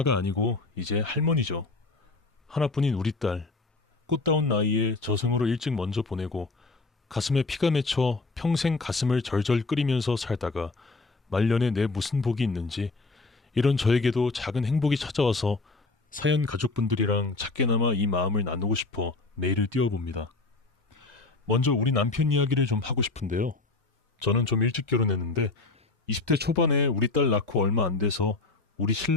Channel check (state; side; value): quieter; right; 3.5 dB